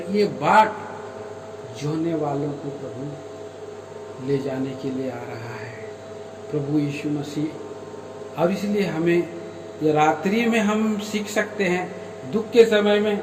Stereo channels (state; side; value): identical; both; correlation 1.00